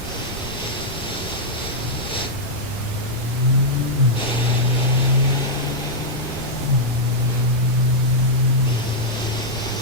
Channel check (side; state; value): both; normal; correlation -0.05